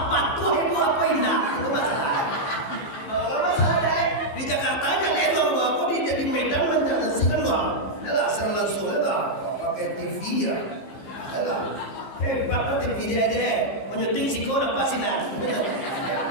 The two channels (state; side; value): late; right; 15 ms